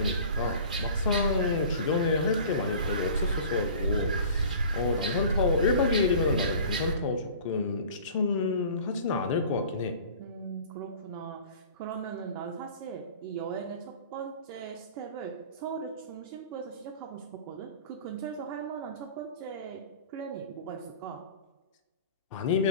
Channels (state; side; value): inverted; both; correlation -0.43